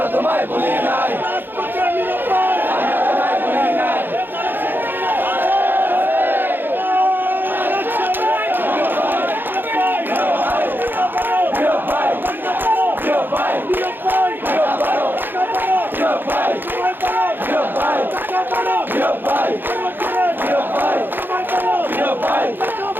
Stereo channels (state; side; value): late; left; 0.097 ms